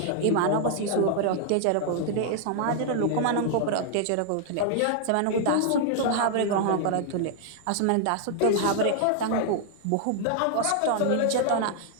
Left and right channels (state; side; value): different; both; correlation 0.00